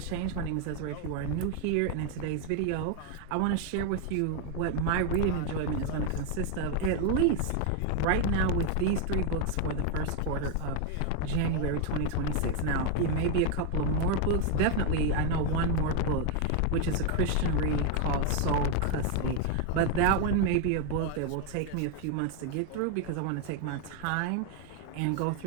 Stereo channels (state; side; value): different; both; correlation 0.01